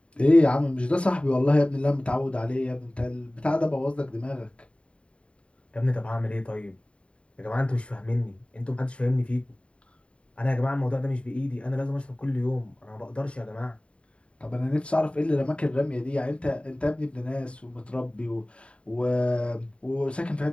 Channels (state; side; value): late; right; 0.060 ms